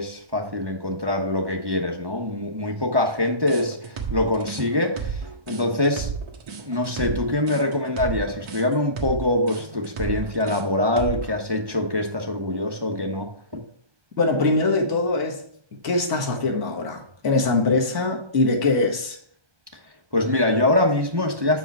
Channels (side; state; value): left; late; 1.1 ms